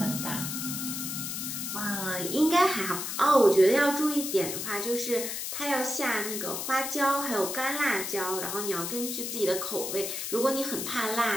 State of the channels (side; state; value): left; noise; hiss, 4 dB below the sound